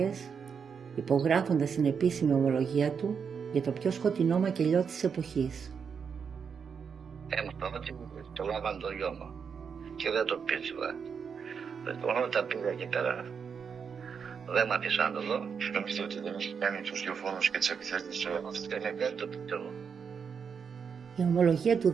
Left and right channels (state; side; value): quieter; left; 6.4 dB